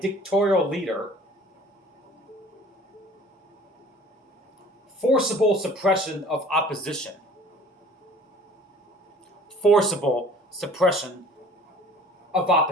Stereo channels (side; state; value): both; normal; correlation 0.49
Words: dictatorial leader. Forcible suppression of opposition. Forcible suppression of